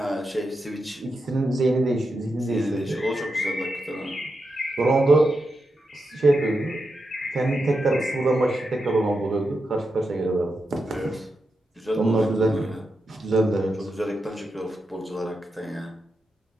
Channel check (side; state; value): both; normal; correlation 0.87